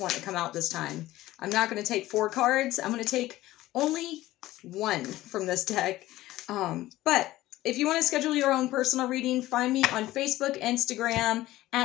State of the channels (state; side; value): quieter; right; 16.2 dB